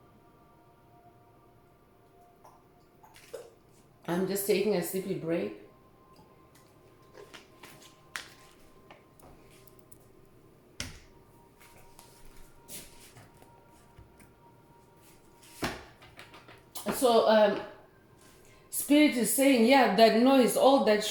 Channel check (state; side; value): identical; both; correlation 1.00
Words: I'm just taking a sippy break. So Spirit is saying, yeah, that noise, all that